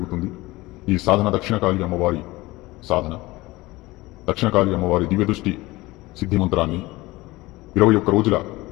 ఈ సాధన దక్షిణకాళి అమ్మవారి సాధన. దక్షిణకాళి అమ్మవారి దివ్యదృష్టి సిద్ధి మంత్రాన్ని 21 రోజుల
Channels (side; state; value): right; quieter; 20.2 dB